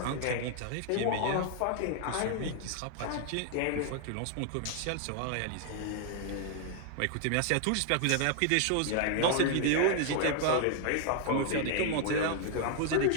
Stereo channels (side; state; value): both; different; correlation 0.00